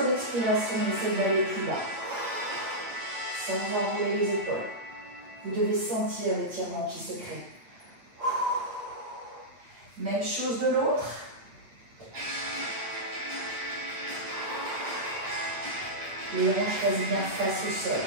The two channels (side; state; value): left; late; 8.7 ms